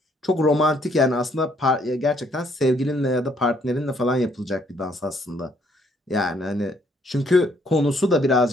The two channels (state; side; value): normal; both; correlation 0.67